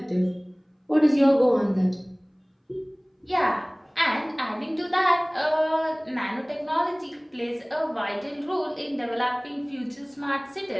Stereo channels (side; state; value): both; identical; correlation 1.00